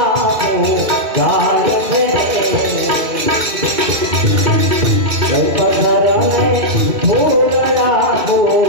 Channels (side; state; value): left; late; 2.7 ms